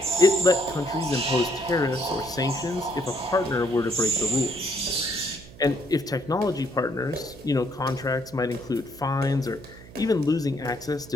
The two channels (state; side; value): noise; right; hum, 19 dB below the sound